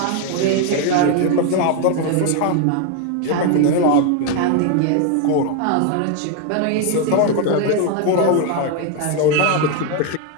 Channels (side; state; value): both; different; correlation 0.01